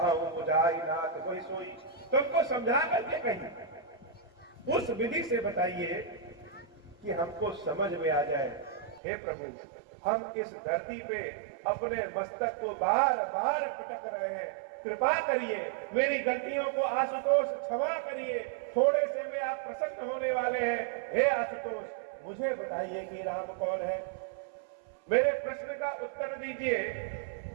मुझाई नाथ कोई सोई। तुमको समझा करके कहीं उस विधि से बताइए कि हमको समझ में आ जाए। हे प्रभु, हम इस धरती पे अपने मस्तक को बार बार पटक रहे हैं, कृपा करिए, मेरी गलतियों को आशुतोष क्षमा करिए, थोड़े से में आप प्रसन्न होने वाले हैं। हे आशुतोष, मुझे बताइए कि राम कौन है। मेरे प्रश्न का उत्तर दीजिए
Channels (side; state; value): left; drops out; at 9.0 s